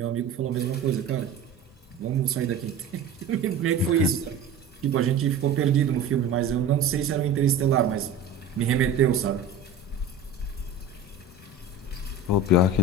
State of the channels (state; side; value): quieter; left; 4.4 dB